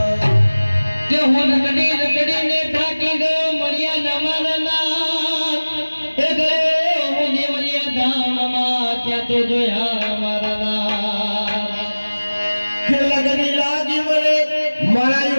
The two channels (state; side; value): inverted; both; correlation -1.00